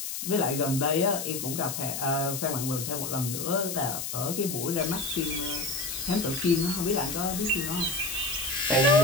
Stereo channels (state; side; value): noise; left; hiss, 5 dB below the sound